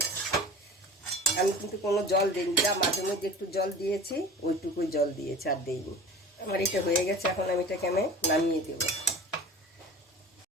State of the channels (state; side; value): normal; both; correlation 0.39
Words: আমি কিন্তু কোনো জল দিইনি, যা মাঝে মধ্যে একটু জল দিয়েছি, ওইটুকুই জল দিয়েছি, আর দিইনি। আমার এটা হয়ে গেছে, এখন আমি এটাকে নামিয়ে দেব।